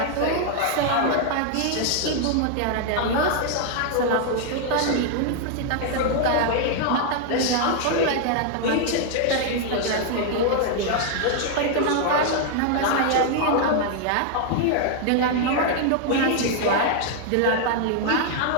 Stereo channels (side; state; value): both; different; correlation 0.00